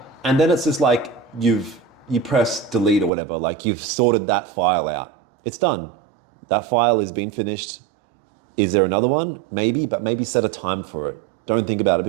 And then it's just like you press delete or whatever, like you've sorted that file out. It's done. That file has been finished. Is there another one? Maybe, but maybe set a time for it. Don't think about it,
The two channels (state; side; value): drops out; left; at 3.1 s